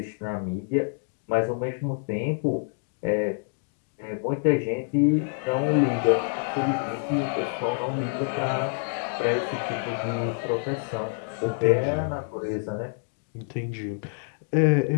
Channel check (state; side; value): silent; right; 60 dB below the other